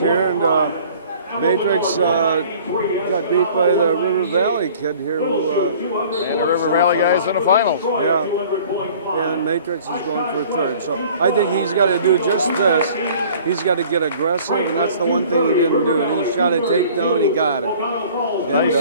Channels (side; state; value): both; inverted; correlation -0.50